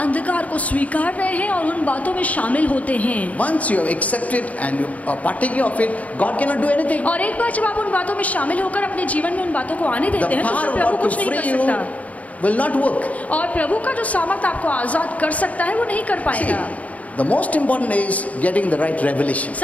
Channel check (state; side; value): late; right; 0.070 ms